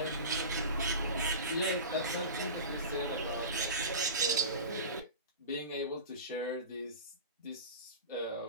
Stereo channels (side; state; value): both; inverted; correlation -0.32